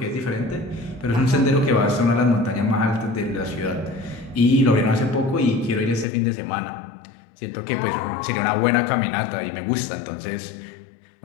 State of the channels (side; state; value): right; drops out; at 6.1 s